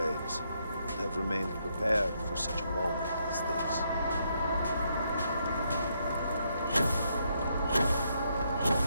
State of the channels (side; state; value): both; inverted; correlation -0.76